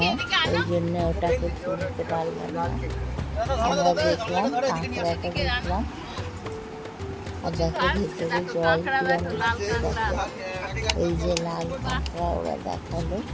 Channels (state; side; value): identical; both; correlation 1.00